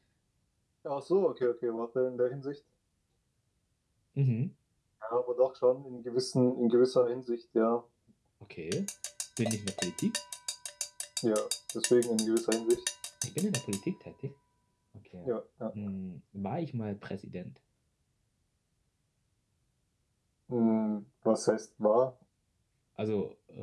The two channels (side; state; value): both; identical; correlation 1.00